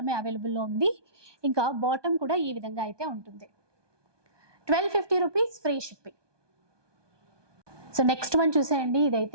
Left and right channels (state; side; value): late; left; 1.2 ms